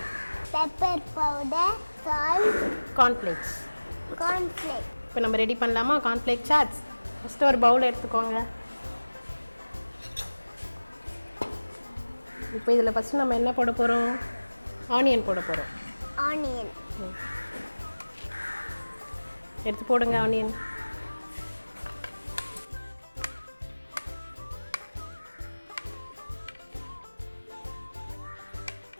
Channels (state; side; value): inverted; both; correlation -1.00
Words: pepper powder, salt, cornflakes. இப்போ நம்ம ரெடி பண்ணலாமா கார்ன்ஃப்ளேக் சாட்ஸ்? ஃபஸ்ட்டு ஒரு பவுல் எடுத்துக்கோங்க. இப்போ இதில் ஃபஸ்ட்டு நம்ம என்ன போட போகிறோம்? ஆனியன் போட போகிறோம். ஆனியன் எடுத்து போடுங்க. ஆனியன்